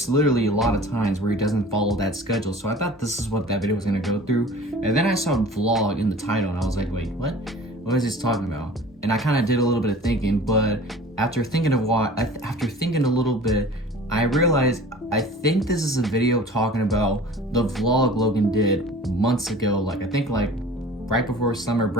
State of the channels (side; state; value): both; normal; correlation 0.44